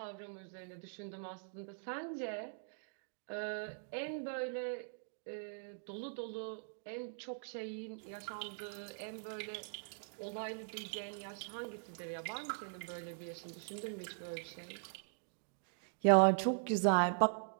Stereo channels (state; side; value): silent; left; digital silence